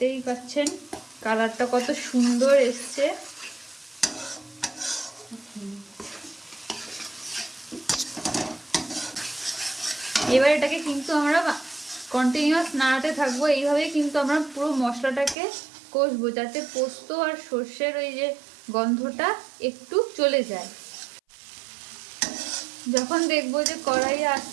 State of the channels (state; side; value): drops out; left; at 15.4 s